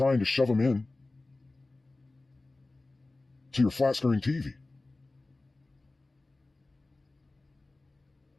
to shove them in to your flat screen TV.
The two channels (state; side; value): quieter; right; 3.1 dB